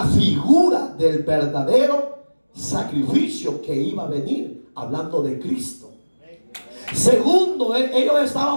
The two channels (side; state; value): both; inverted; correlation -1.00